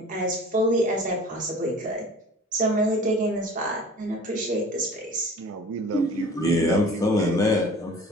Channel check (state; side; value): normal; both; correlation 0.44